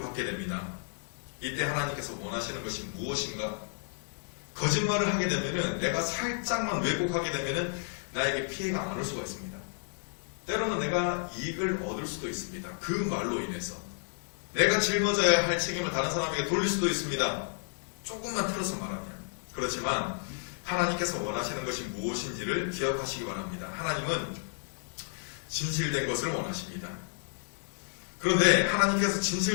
받게 됩니다. 이때 하나님께서 원하시는 것이 무엇인가? 거짓말을 하게 되면은 내가 살짝만 왜곡하게 되면은 나에게 피해가 안 올 수가 있습니다. 때로는 내가 이익을 얻을 수도 있습니다. 그 말로 인해서 내가 짊어져야 할 책임을 다른 사람에게 돌릴 수도 있습니다. 조금만 틀어서 말하면. 그렇지만 하나님께서 원하시는 것이 무엇인지를 기억하시기 바랍니다. 하나님은 진실된 것을 원하십니다. 그런데 하나님께서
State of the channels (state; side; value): silent; right; digital silence